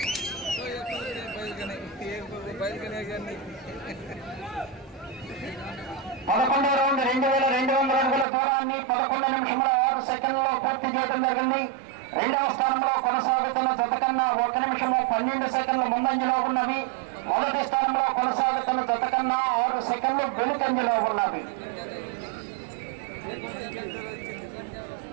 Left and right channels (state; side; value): drops out; left; at 8.2 s